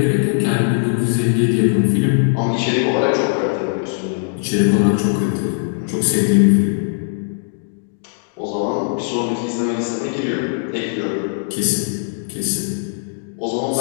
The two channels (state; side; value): silent; right; digital silence